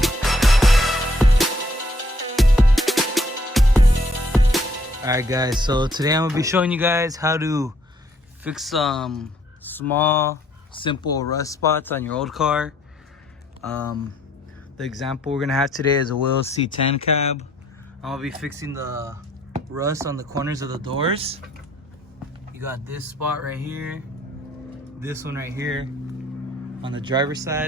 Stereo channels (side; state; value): both; normal; correlation 0.65